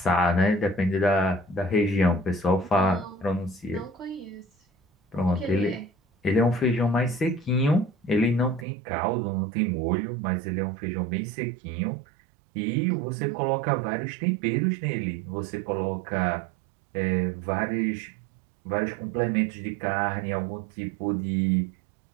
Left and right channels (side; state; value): left; drops out; at 8.7 s